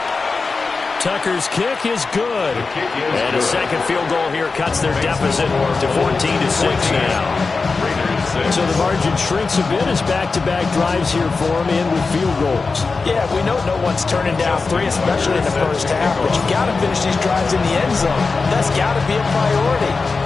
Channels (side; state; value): right; quieter; 4.2 dB